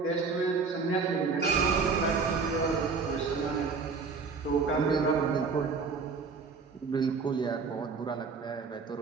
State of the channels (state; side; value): quieter; left; 4.9 dB